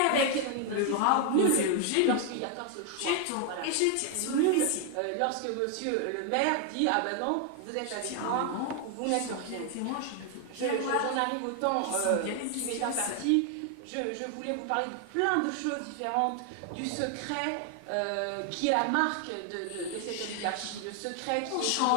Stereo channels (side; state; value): both; different; correlation 0.00